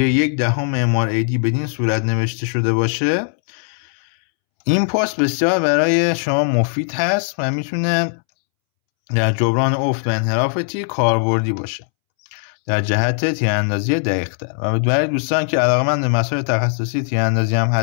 1/10 MRAD بدین صورت نوشته شده باشه، این پست بسیار برای شما مفید هست و میتونه در جبران افت و انحراف تیر کاربردی باشه در جهت تیراندازی دقیق‌تر. و برای دوستان که علاقه‌مند به مسائل تخصصی تیراندازی هم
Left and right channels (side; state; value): right; silent; 67 dB below the other